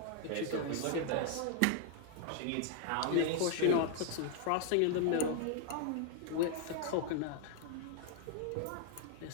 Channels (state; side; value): different; both; correlation 0.00